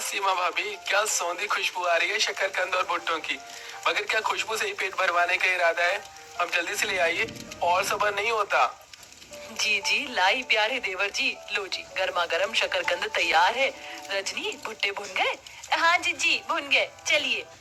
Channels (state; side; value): identical; both; correlation 1.00